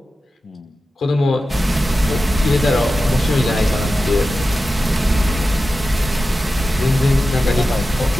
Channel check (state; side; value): normal; both; correlation 0.93